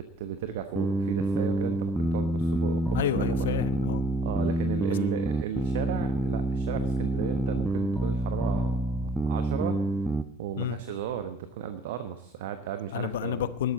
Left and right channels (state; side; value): normal; both; correlation 0.56